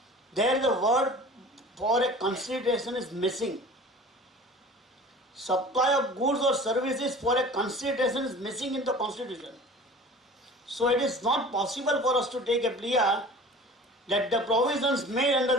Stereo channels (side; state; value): both; normal; correlation 0.42